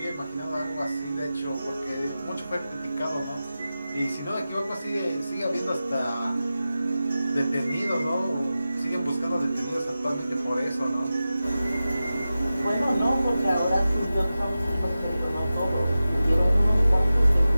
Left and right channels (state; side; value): inverted; both; correlation -0.94